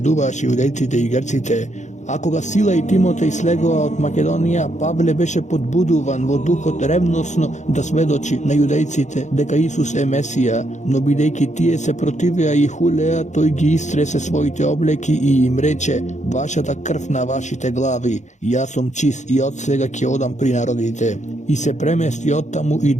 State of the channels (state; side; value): late; right; 0.34 ms